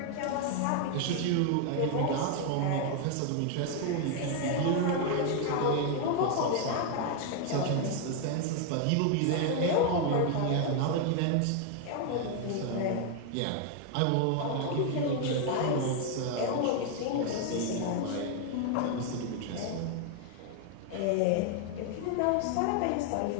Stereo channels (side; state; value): both; different; correlation 0.01